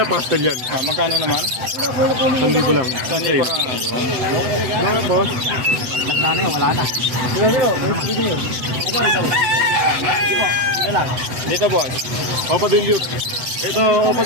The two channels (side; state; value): left; late; 7.9 ms